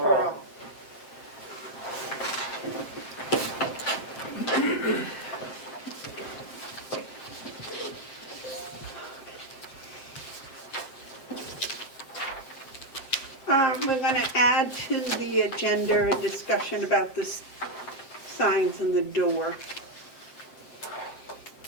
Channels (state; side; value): late; right; 7.5 ms